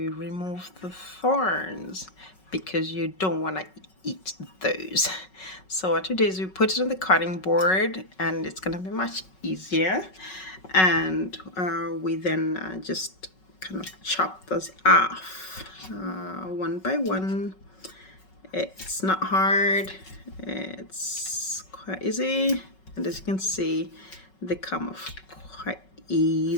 remove the thorns because you don't want to eat those. So what we do is we put it on the cutting board and it's going to be much easier. And we then just kind of chop those off one by one. It's not hard, it's quite easy, and as you can see, they come off quite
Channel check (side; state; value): right; late; 5.4 ms